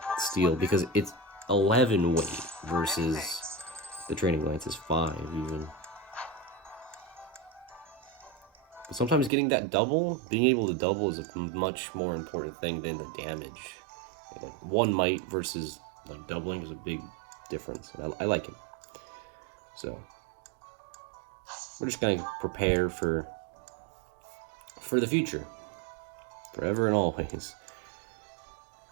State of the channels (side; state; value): left; drops out; at 9.3 s